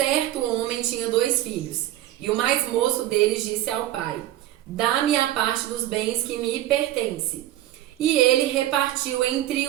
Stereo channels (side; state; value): left; quieter; 13.9 dB